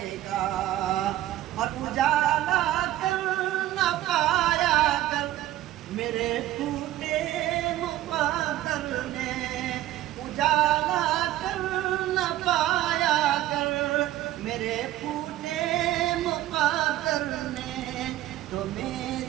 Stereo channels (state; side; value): quieter; left; 14.5 dB